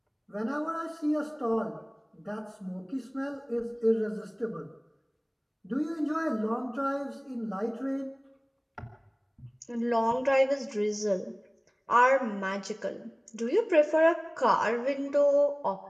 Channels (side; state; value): both; identical; correlation 1.00